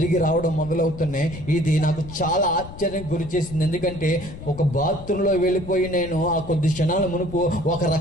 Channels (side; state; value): left; noise; rumble, 14 dB below the sound